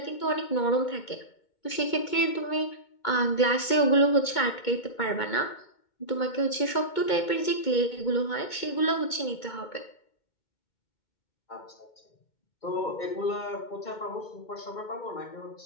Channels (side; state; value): right; late; 2.2 ms